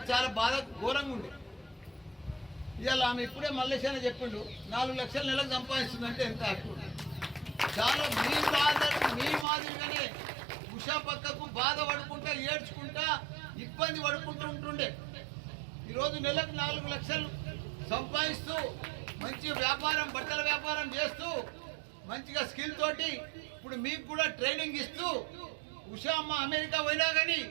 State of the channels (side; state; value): left; drops out; at 9.5 s